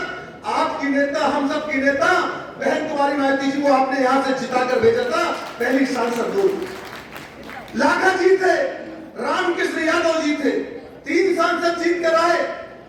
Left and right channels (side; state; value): both; identical; correlation 1.00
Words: आपकी नेता, हम सब की नेता बहन कुमारी माइती जी को आपने यहां से जिताकर भेजा था। पहली सांसद वो लाखा जी थे, रामकृष्ण यादव जी थे, 3 सांसद जीत कर आए।